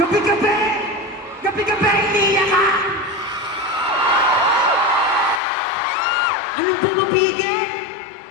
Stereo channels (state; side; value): drops out; right; at 5.4 s